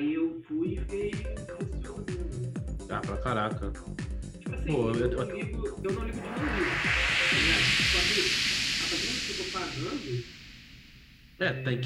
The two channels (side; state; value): both; identical; correlation 1.00